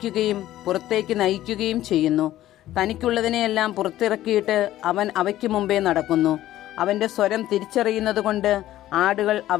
പുറത്തേക്ക് നയിക്കുകയും ചെയ്യുന്നു. തനിക്കുള്ളതിനെയെല്ലാം പുറത്തിറക്കിയിട്ട് അവൻ അവയ്ക്ക് മുമ്പേ നടക്കുന്നു. അവൻ്റെ സ്വരം തിരിച്ചറിയുന്നതുകൊണ്ട് ആടുകൾ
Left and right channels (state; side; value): quieter; right; 14.0 dB